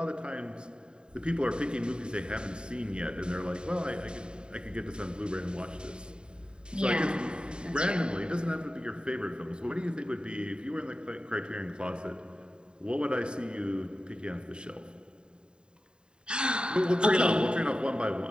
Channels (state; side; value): late; left; 0.049 ms